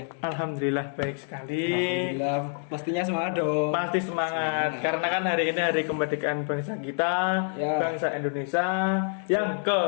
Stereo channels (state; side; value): silent; right; 60 dB below the other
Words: Alhamdulillah baik sekali. Alhamdulillah, pastinya semangat dong. Pasti semangat. Karena kan hari ini hari kemerdekaan bangsa kita, Ya. bangsa Indonesia yang